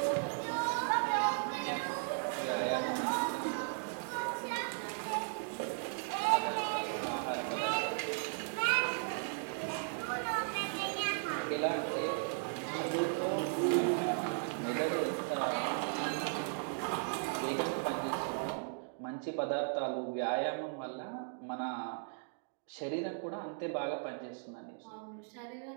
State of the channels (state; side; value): silent; left; digital silence